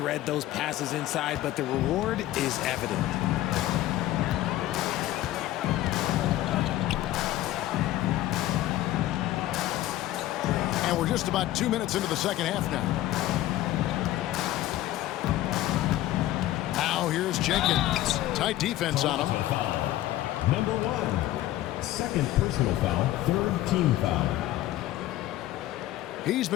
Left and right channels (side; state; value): right; quieter; 14.7 dB